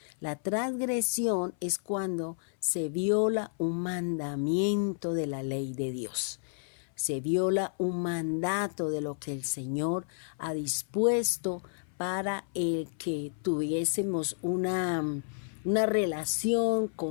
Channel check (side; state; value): right; silent; 56 dB below the other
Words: La transgresión es cuando se viola un mandamiento de la ley de Dios. Se viola un mandato de lo que el Señor ha dispuesto para el que tuviésemos una relación